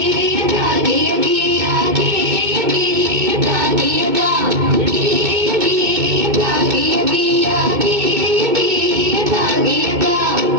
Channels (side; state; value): left; late; 2.2 ms